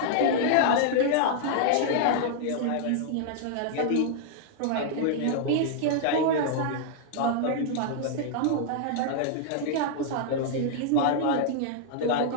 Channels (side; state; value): both; different; correlation -0.01